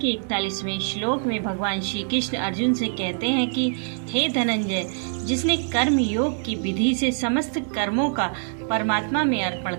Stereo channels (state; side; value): silent; left; 61 dB below the other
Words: 41वें श्लोक में भगवान श्री कृष्ण अर्जुन से कहते हैं कि हे धनंजय, जिसने कर्म योग की विधि से समस्त कर्मों का परमात्मा में अर्पण